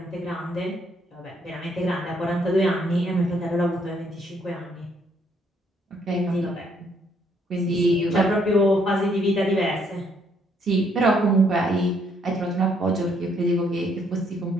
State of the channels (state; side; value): normal; both; correlation 0.70